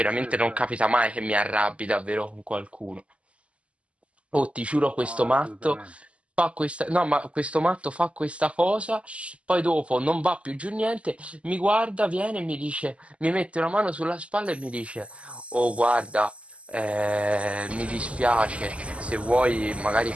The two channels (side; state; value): left; late; 0.060 ms